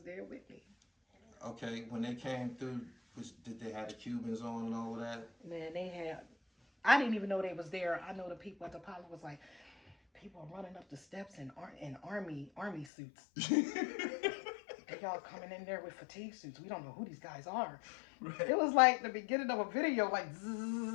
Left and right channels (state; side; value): drops out; right; at 12.9 s